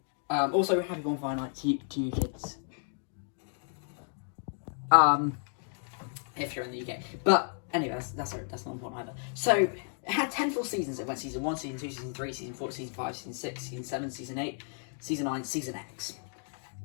Also, happy bonfire night to you kids. If you're in the UK. But anyway, that's not important either. So it had 10 full seasons. It went season 1, season 2, season 3, season 4, season 5, season 6, season 7, season 8, season 9, season X.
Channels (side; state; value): right; silent; 56 dB below the other